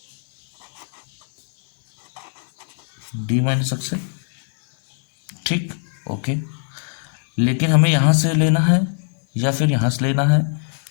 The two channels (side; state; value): right; silent; 59 dB below the other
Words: डी माइनस एक्स, ठीक, ओके। लेकिन हमें यहाँ से लेना है या फिर यहाँ से लेना है,